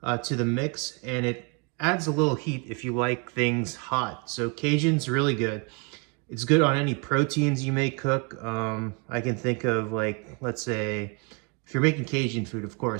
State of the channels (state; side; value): quieter; left; 32.6 dB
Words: to the mix, and it adds a little heat if you like things hot. So Cajun's really good. It's good on any proteins you may cook. I can think of like, let's say, if you're making Cajun food, of